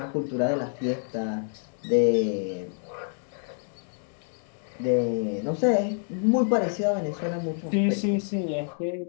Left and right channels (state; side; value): silent; right; 60 dB below the other